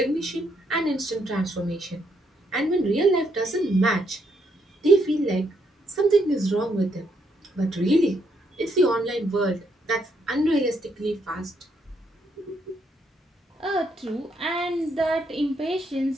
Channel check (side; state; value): both; normal; correlation 0.75